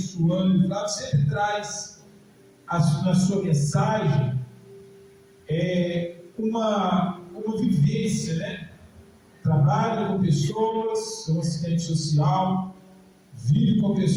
O Flávio sempre traz na sua mensagem uma vivência, né? Trabalha com pessoas, é um assistente social, vive com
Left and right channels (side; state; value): both; identical; correlation 1.00